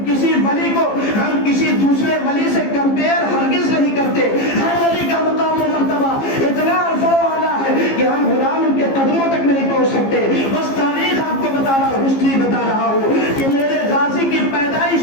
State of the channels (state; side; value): late; right; 15 ms